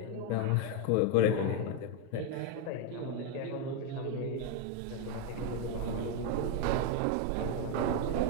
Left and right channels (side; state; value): both; different; correlation 0.02